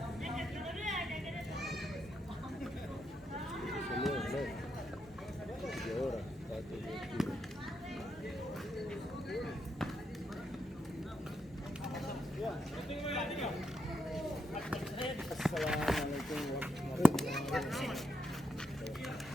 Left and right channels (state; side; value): normal; both; correlation 0.81